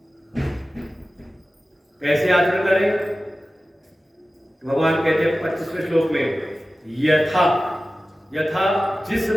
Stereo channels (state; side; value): normal; both; correlation 0.95